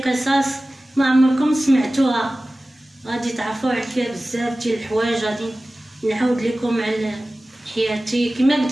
قصص ما عمركم سمعتوها، غادي تعرفوا عليها بزاف ديال الحوايج. غادي نعاود لكم على حياتي كما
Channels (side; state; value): both; normal; correlation 0.97